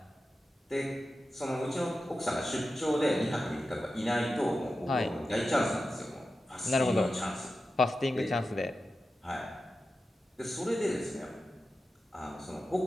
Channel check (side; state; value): both; normal; correlation 0.92